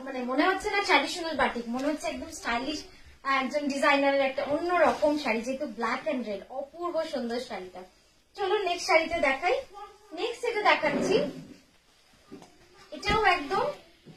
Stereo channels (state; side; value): identical; both; correlation 1.00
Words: মানে মনে হচ্ছে না ট্র্যাডিশনাল বাটিক, মনে হচ্ছে একদম স্টাইলিশ একজন ডিজাইনারের একটা অন্য রকম শাড়ি, যেহেতু ব্ল্যাক এন্ড রেড। অপূর্ব সুন্দর শাড়িটা। চলো নেক্সট শাড়িতে দেখাই। নেক্সট এটা দেখাচ্ছি, এটাও একদম